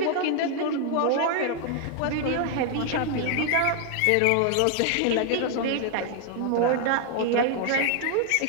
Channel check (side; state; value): both; different; correlation 0.00